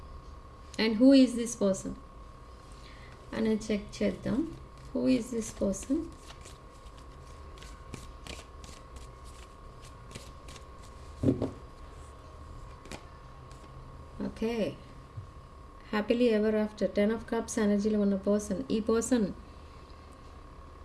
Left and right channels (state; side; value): identical; both; correlation 1.00